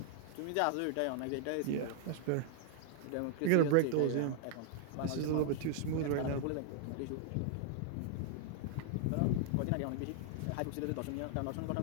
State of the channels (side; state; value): both; different; correlation -0.01